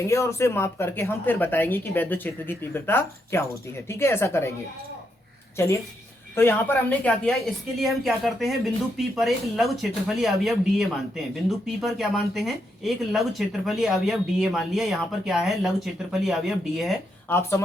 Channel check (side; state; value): both; normal; correlation 0.80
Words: और उसे माप करके हम फिर बताएंगे कि विद्युत क्षेत्र की तीव्रता क्या होती है। ठीक है, ऐसा करेंगे। चलिए, तो यहाँ पर हमने क्या किया, इसके लिए हम क्या करते हैं, बिंदु P पर एक लघु क्षेत्रफलीय अवयव dA मानते हैं। बिंदु P पर क्या मानते हैं, एक लघु क्षेत्रफलीय अवयव dA मान लिया। यहाँ पर क्या है, लघु क्षेत्रफलीय अवयव dA है। आप